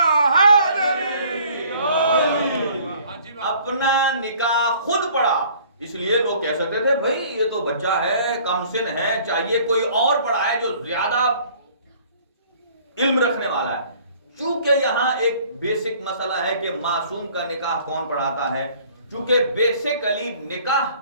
اپنا نکاح خود پڑھا۔ اس لیے لوگ کہہ سکتے تھے بھائی یہ تو بچہ ہے، کم سن ہے، چاہیے کوئی اور پڑھائے جو زیادہ علم رکھنے والا ہے۔ چونکہ یہاں ایک بیسک مسئلہ ہے کہ معصوم کا نکاح کون پڑھاتا ہے، چونکہ بیسیکلی نکاح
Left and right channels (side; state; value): both; inverted; correlation -0.54